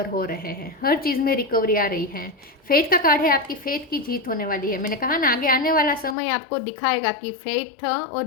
हो रहे हैं। हर चीज़ में रिकवरी आ रही है। फेथ का कार्ड है, आपकी फेथ की जीत होने वाली है। मैंने कहा ना, आगे आने वाला समय आपको दिखाएगा कि फेथ और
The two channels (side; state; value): right; drops out; at 6.2 s